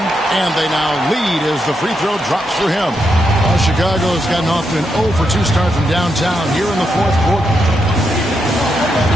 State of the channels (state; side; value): normal; both; correlation 0.82